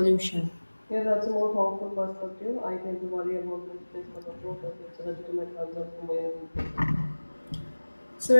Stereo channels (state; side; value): inverted; both; correlation -1.00